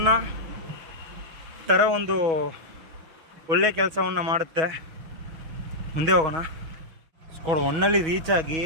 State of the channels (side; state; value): left; late; 6.2 ms